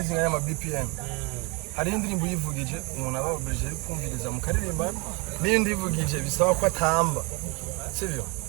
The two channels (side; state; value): left; quieter; 29.2 dB